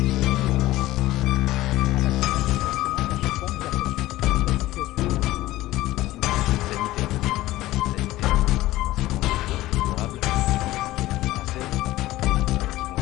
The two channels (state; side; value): quieter; right; 16.7 dB